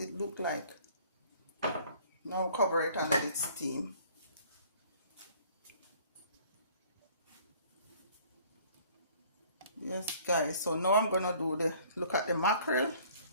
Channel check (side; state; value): both; inverted; correlation -0.55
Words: looked like. Now cover it and let it steam. Yes guys, so now I'm gonna look at the mackerel.